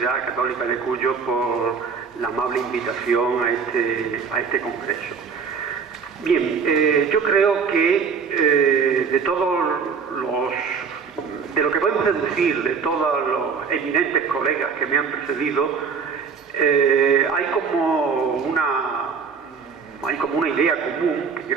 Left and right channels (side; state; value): left; quieter; 5.8 dB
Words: Católica de Cuyo por la amable invitación a este congreso. Bien, yo creo que de lo que podemos deducir de todos los eminentes colegas que me han precedido, hay como una idea común, que